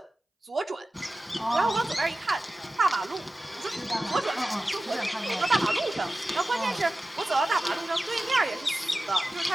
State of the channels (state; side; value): normal; both; correlation 0.95